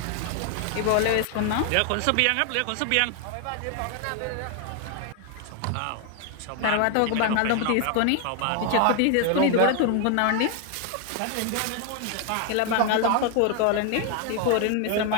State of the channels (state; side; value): different; both; correlation 0.00